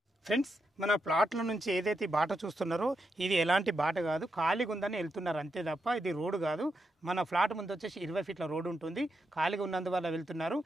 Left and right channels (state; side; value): normal; both; correlation 0.84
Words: Friends మన ప్లాట్ల నుంచి ఏదైతే బాట చూస్తున్నారో ఇది ఎలాంటి బాట కాదు, ఖాళీగా ఉందని వెళ్తున్నారు అంతే తప్ప ఇది రోడ్డు కాదు. మన ఫ్లాట్ ముందు వచ్చేసి 20 ఫీట్ల రోడ్డు ఉంటుంది, ఖాళీగా ఉన్నందువల్ల వెళ్తున్నారు.